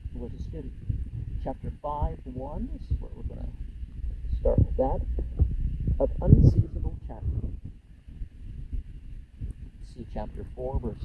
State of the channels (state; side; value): identical; both; correlation 1.00